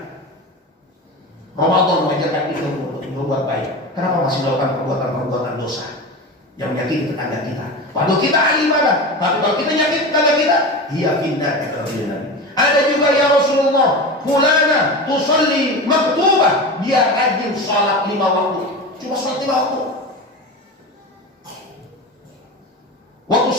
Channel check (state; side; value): normal; both; correlation 0.27